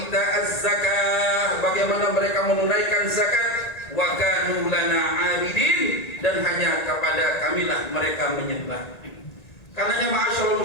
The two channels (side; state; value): right; late; 1.9 ms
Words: zakah, bagaimana mereka menunaikan zakat. Wa kanu lana 'abidin, dan hanya kepada kamilah mereka menyembah. Karenanya ma'asyiral